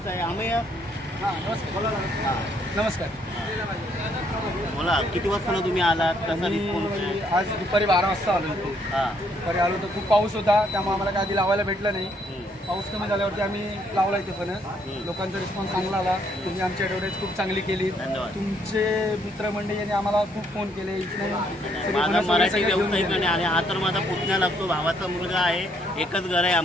आहे। अमय्य नमस्कार, बोला किती वाजता तुम्ही आलात, कसा रिस्पॉन्स आहे? आज दुपारी 12 वाजता आलो होतो। दुपारी आलो तर खूप पाऊस होता, त्यामुळे आम्हाला काय आधी लावायला भेटलं नाही। पाऊस कमी झाल्यावरती आम्ही लावला इथे फणस। लोकांचा रिस्पॉन्स चांगला आला, तुम्ही आमची ॲडव्हर्टाईज खूप चांगली केली। तुमचे मित्रमंडळी यांनी आम्हाला खूप फोन केले। माझा मराठी व्यावसायिक आणि हा तर माझा पुतण्या लागतो, भावाचा मुलगा आहे, एकच घर आहे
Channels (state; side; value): normal; both; correlation 0.69